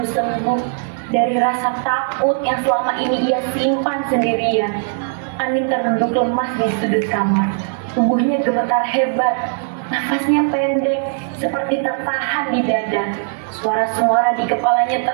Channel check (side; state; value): left; silent; digital silence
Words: sembuh, dari rasa takut yang selama ini ia simpan sendirian. Anin terduduk lemas di sudut kamar. Tubuhnya gemetar hebat, nafasnya pendek, seperti tertahan di dada. Suara-suara di kepalanya